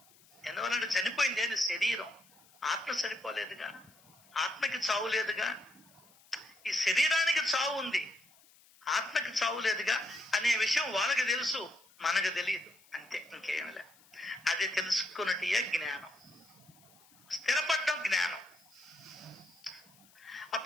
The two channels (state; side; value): noise; left; hiss, 28 dB below the sound